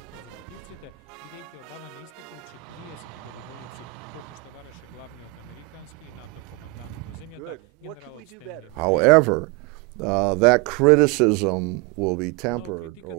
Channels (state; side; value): quieter; left; 23.1 dB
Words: конзервативците, бидејќи Обама не испратил 40.000 војници, колку што бараше главниот американски и НАТО командант во земјата, генералот Стенли Мекристал. Но